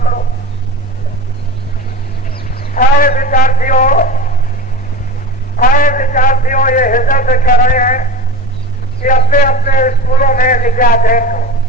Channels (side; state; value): both; normal; correlation 0.32